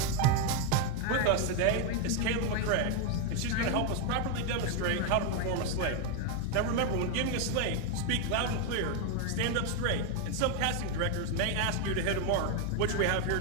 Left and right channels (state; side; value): different; both; correlation 0.01